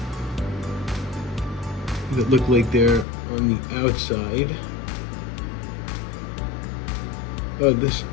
that look like they're on the outside. Oh,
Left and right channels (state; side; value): drops out; right; at 3.1 s